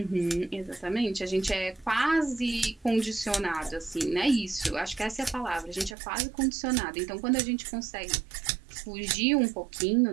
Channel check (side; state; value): left; drops out; at 6.0 s